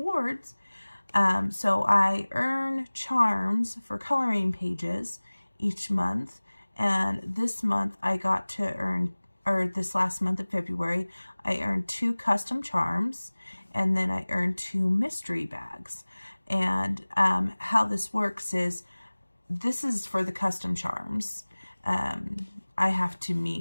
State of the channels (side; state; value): both; inverted; correlation -1.00